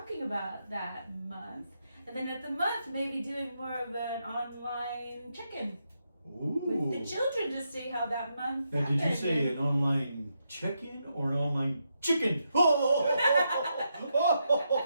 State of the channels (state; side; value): inverted; both; correlation -0.82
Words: about that month. And then at the month, maybe doing more of an online check-in with the children to see how that month Now, happened. did you say an online check-in or an online chicken?